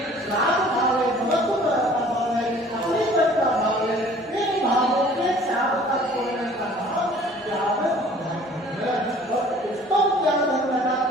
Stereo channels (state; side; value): normal; both; correlation 0.51